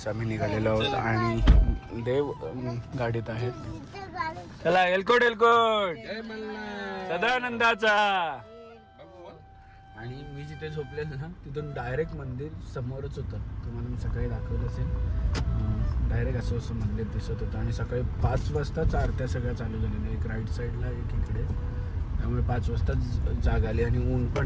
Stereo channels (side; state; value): both; identical; correlation 1.00